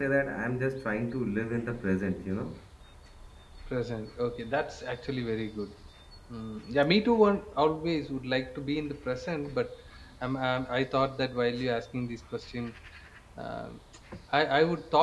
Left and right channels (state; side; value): identical; both; correlation 1.00